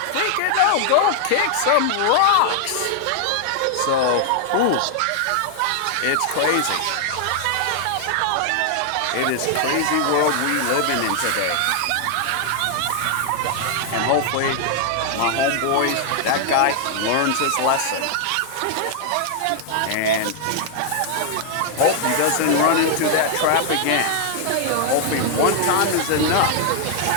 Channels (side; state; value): both; different; correlation 0.00